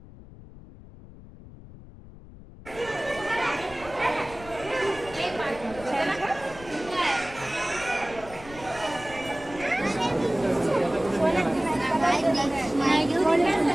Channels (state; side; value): noise; left; rumble, 18 dB below the sound